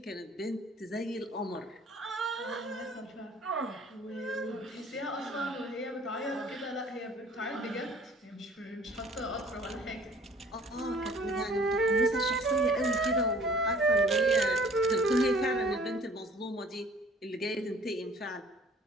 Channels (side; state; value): both; normal; correlation 0.52